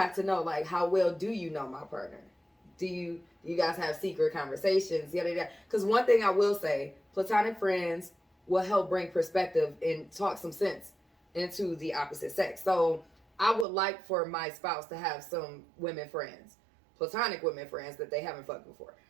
to know, like, how well do you know my partner? Do you guys have secret conversations? Because one thing I will say, platonic friends will help bring perspective and talk some sense into the opposite sex. So I would like for my spouse to have some women friends, platonic women friends that they haven't fucked before.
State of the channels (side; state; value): left; drops out; at 13.7 s